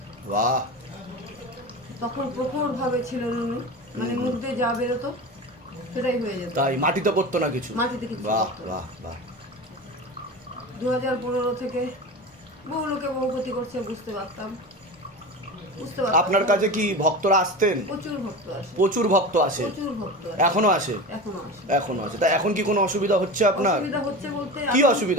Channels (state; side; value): normal; both; correlation 0.29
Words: বাহ। তখন প্রখর ভাবে ছিল নুনু, মানে মুখ দিয়ে যা বেরোতো সেটাই হয়ে যেত, তাই মাটিতে পড়তো না কিছু? মাটিতে কিছু বাহ পড়তো না। বাহ বাহ। 2015 থেকে বহু লোকে বহু ক্ষতি করছে, বুঝতে পারতাম। আপনার কাছে কি ভক্তরা আসতেন? প্রচুর ভক্ত আসে, প্রচুর ভক্ত আসে? প্রচুর ভক্ত আসে, এখনো আসে? এখনো আসে। এখনো আছে। তা এখন কি কোনো অসুবিধা হচ্ছে আপনার? অসুবিধা হচ্ছে বলতে কি এখন